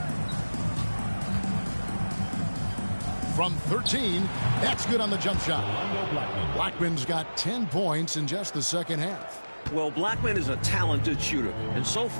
From 13, that's good on the jump shot. Blackman's got 10 points in just the second half. Well, Blackman is a talented shooter, and so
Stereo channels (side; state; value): both; inverted; correlation -1.00